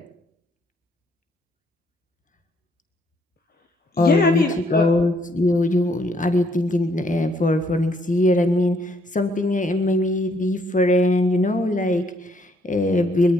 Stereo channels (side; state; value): both; normal; correlation 0.68